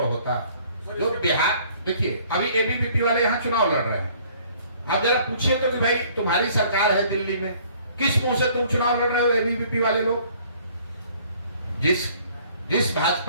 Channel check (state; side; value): inverted; both; correlation -0.57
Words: होता। जो बिहार, देखिए अभी एबीवीपी वाले यहाँ चुनाव लड़ रहे हैं, आप जरा पूछिए तो कि भाई तुम्हारी सरकार है दिल्ली में, किस मुंह से तुम चुनाव लड़ रहे हो एबीवीपी वाले लोग? जिस